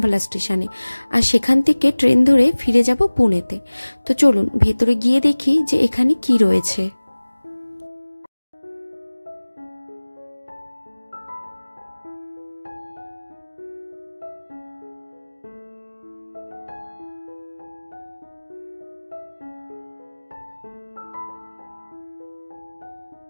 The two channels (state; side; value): inverted; both; correlation -1.00